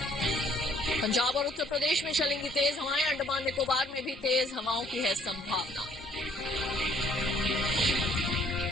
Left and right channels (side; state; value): both; normal; correlation 0.62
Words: पंजाब और उत्तर प्रदेश में चलेंगी तेज हवाएं, अंडमान निकोबार में भी तेज हवाओं की है संभावना।